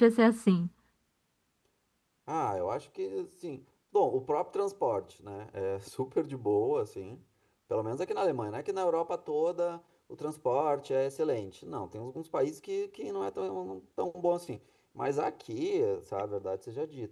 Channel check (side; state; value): both; identical; correlation 1.00